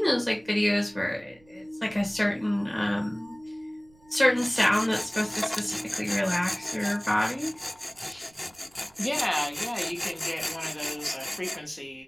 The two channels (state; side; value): noise; right; rumble, 29 dB below the sound